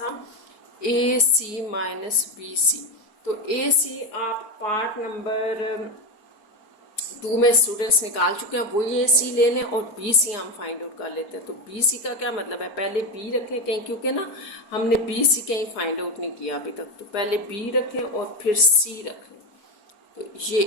ac - bc। तो ac आप पार्ट नंबर 2 में स्टूडेंट्स निकाल चुके हैं, वही ac ले लें, और bc हम फाइंड आउट कर लेते हैं। तो bc का क्या मतलब है, पहले b रखें कहीं, क्योंकि ना हमने bc कहीं फाइंड आउट नहीं किया अभी तक। तो पहले b रखें और फिर c रखें। तो ये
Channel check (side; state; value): right; late; 4.4 ms